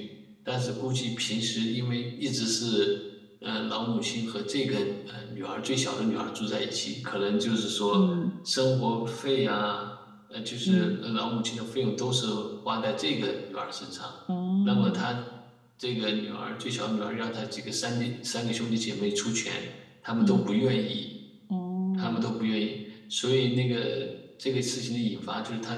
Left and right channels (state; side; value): identical; both; correlation 1.00